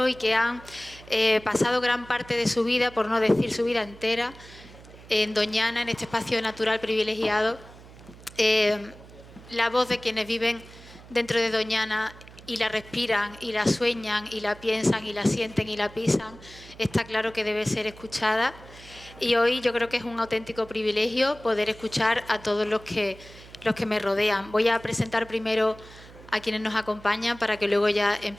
y que han pasado gran parte de su vida, por no decir su vida entera, en Doñana, en este espacio natural privilegiado. La voz de quienes viven dentro de Doñana y la respiran y la sueñan y la piensan y la sienten y la pisan, está claro que debe ser escuchada. Y hoy yo creo que es un auténtico privilegio poder escuchar a todos los que me rodean. Voy a presentar primero a quienes nos acompañan para que luego ya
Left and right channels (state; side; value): noise; right; hum, 20 dB below the sound